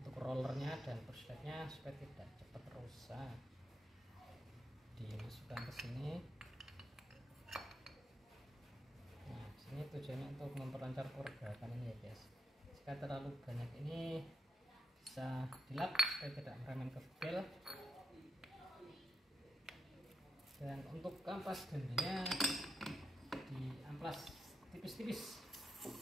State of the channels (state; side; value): normal; both; correlation 0.83